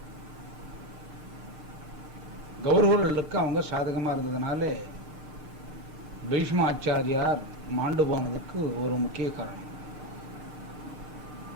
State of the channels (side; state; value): left; late; 6.6 ms